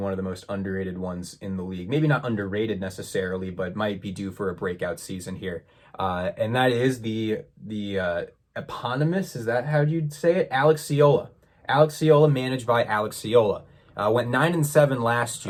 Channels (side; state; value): both; identical; correlation 1.00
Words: of the most underrated ones in the league. Maybe not underrated necessarily, but might be due for a breakout season here. And that is the eponymous, is that how you'd say it? Alex Ciola. Alex Ciola, managed by Alex Ciola. Went 9-7 last